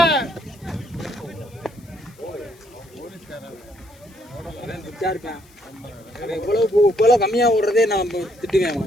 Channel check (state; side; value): noise; left; hiss, 28 dB below the sound